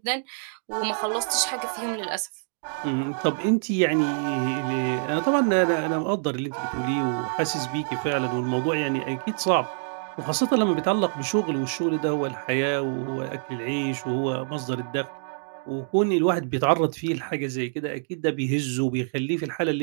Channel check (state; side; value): silent; left; digital silence